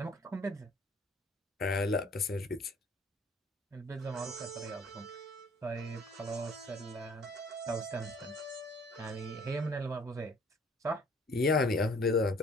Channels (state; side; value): normal; both; correlation 0.55